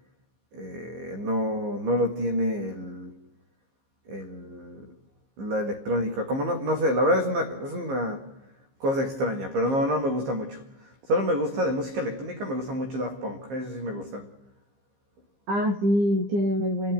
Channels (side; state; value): left; late; 15 ms